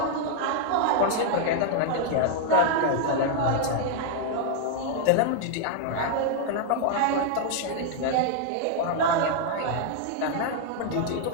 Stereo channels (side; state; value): both; different; correlation 0.00